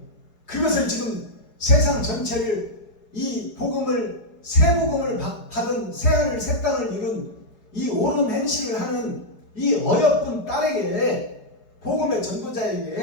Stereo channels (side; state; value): right; late; 4.8 ms